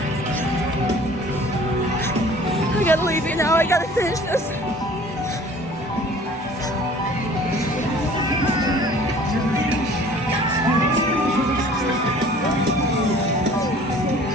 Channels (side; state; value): both; normal; correlation 0.49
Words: I gotta leave you now. I gotta finish this.